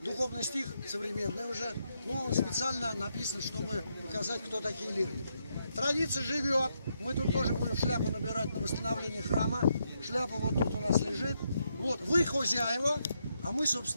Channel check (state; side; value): inverted; both; correlation -0.80